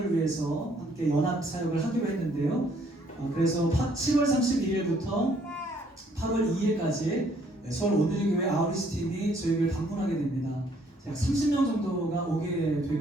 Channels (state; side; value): normal; both; correlation 0.65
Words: 위해서 함께 연합 사역을 하기로 했는데요. 그래서 7월 31일부터 8월 2일까지 서울 온누리 교회 아우리스 팀이 저희 교회를 방문하게 됩니다. 약 30명 정도가 오게